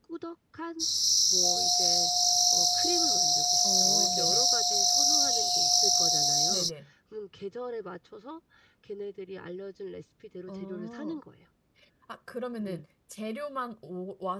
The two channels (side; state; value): both; identical; correlation 1.00